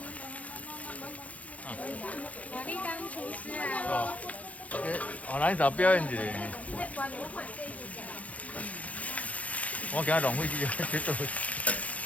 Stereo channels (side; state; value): right; late; 0.068 ms